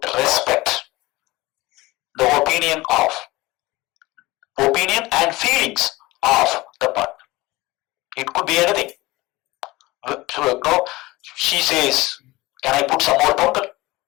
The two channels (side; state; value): right; quieter; 20.4 dB